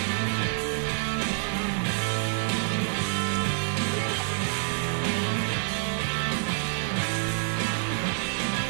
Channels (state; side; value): silent; left; 60 dB below the other